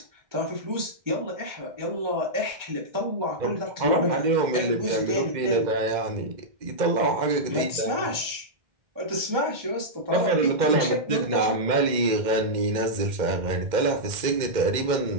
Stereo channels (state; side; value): late; left; 2.1 ms